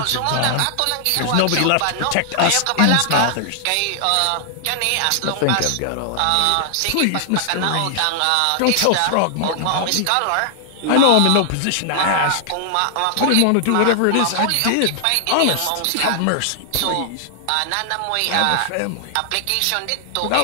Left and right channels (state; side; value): different; both; correlation 0.00